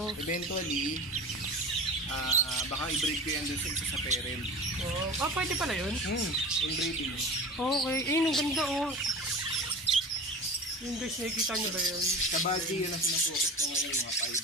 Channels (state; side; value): normal; both; correlation 0.34